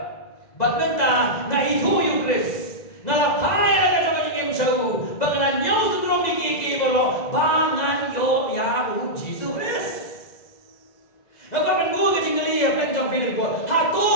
but menta na itu yung Chris. Na lapay na ka jong jing show, bago na nyaw sundrom ni boro bangan yo ya Jesus Chris. Ako man buo ka jing gali plan jong film ko.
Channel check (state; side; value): late; right; 2.0 ms